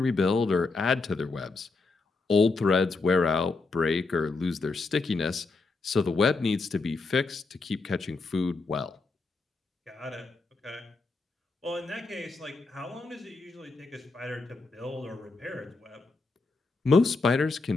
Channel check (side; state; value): right; quieter; 3.8 dB